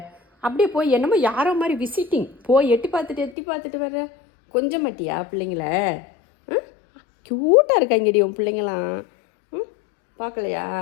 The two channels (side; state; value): right; drops out; at 3.4 s